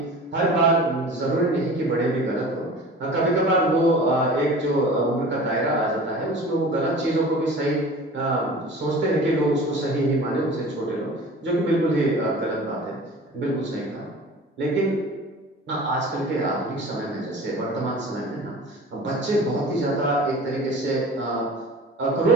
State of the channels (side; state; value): both; normal; correlation 0.40